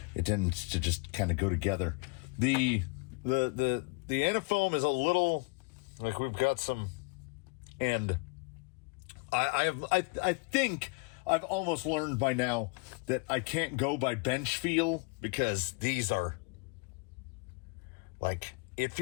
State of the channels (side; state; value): right; quieter; 30.4 dB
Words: it tends to just kind of go together. The Antifoam is a little like we've got some, and I think I've almost learned by now that I can't go by bench feel because these are like, it